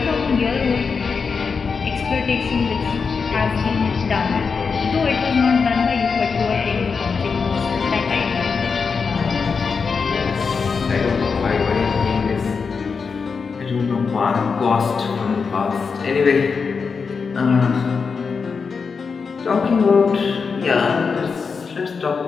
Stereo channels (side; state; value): right; quieter; 5.3 dB